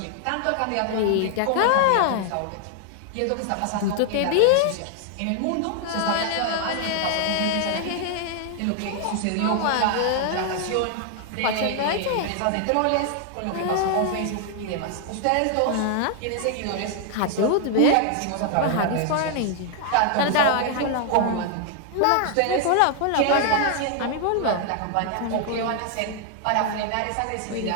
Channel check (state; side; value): different; both; correlation 0.00